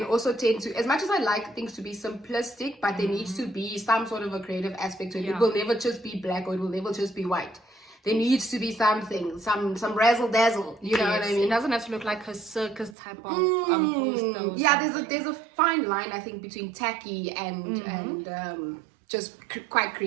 also tend to, as much as I like things to be simplistic, but there needs to be some sort of a creative aspect to it. It will never just be black, or it will never just be white. There needs to be something, some razzle dazzle. You know what I mean? It doesn't have to look like a circus type of poster. Yeah, there's a fine line, I think, between tacky and just quite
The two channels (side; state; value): left; drops out; at 13.0 s